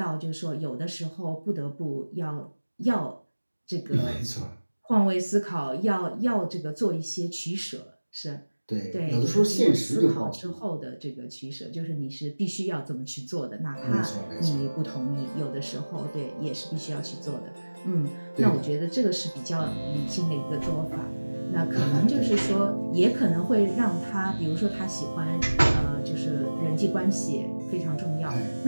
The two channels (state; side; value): inverted; both; correlation -1.00